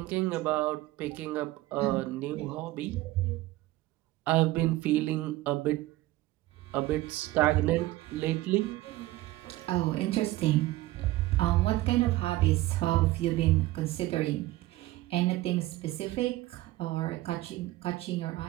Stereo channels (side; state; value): left; quieter; 17.3 dB